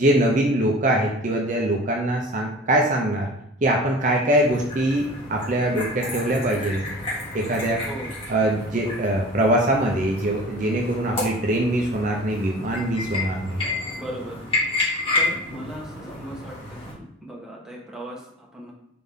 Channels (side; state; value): both; normal; correlation 0.39